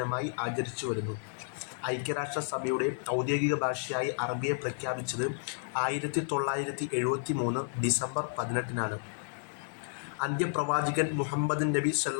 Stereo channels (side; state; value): right; silent; digital silence